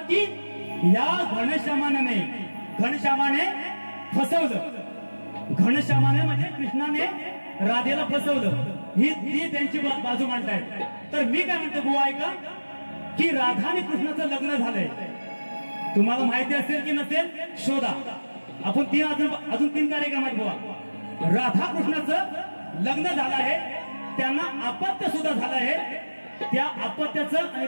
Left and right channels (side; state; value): both; inverted; correlation -1.00